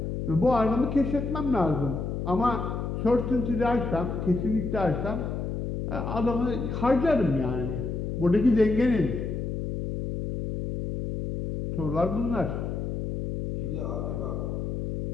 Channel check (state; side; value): noise; left; hum, 3 dB below the sound